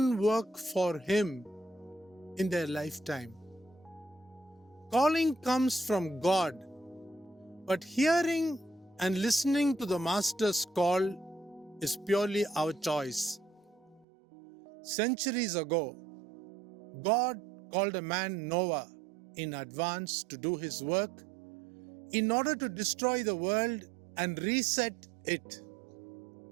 work for Him in their lifetime. Calling comes from God, but hearing and listening to the Master's call is purely our choice. Centuries ago, God called a man Noah in advance to do His work in order to destroy the world and reset it.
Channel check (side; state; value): left; drops out; at 14.1 s